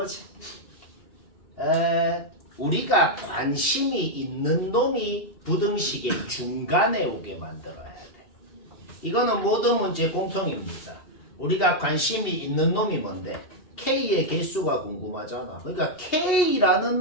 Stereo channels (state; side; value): late; right; 2.7 ms